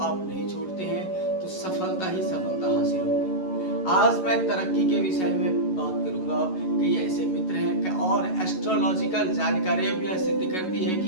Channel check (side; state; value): right; late; 11 ms